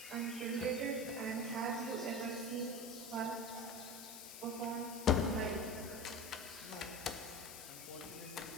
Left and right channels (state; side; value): noise; left; hiss, 10 dB below the sound